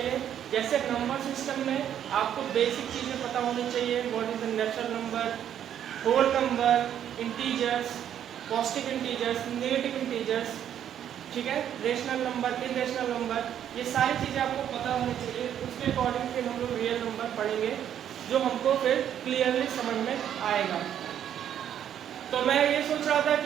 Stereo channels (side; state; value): left; quieter; 9.9 dB